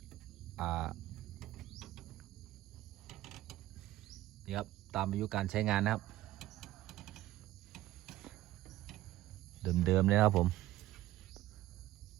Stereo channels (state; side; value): quieter; left; 15.5 dB